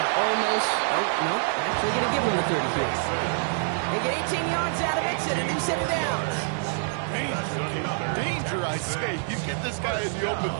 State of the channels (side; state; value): left; silent; 61 dB below the other